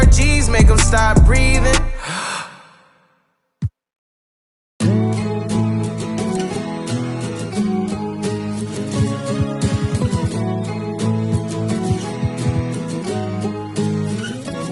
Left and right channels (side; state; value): both; identical; correlation 1.00